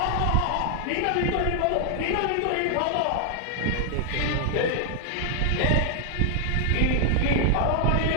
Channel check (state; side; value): different; both; correlation 0.00